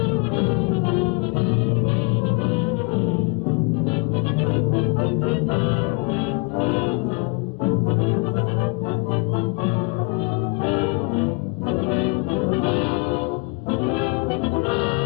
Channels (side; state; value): right; quieter; 28.9 dB